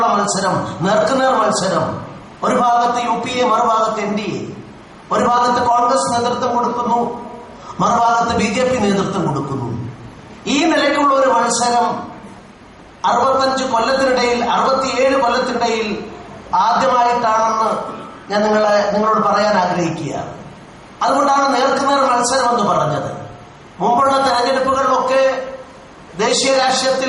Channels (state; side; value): identical; both; correlation 1.00